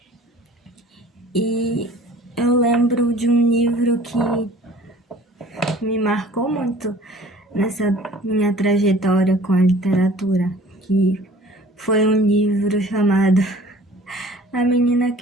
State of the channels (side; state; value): both; normal; correlation 0.49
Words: E eu lembro de um livro que me marcou muito nessa minha trajetória com a literatura, que foi um livro chamado A Menina